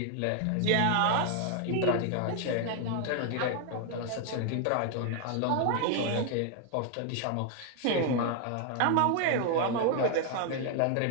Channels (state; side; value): different; both; correlation 0.00